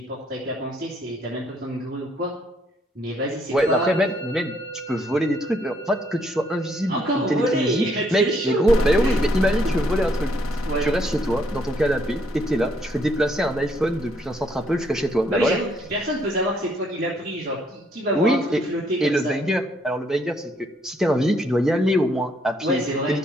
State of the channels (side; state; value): both; normal; correlation 0.70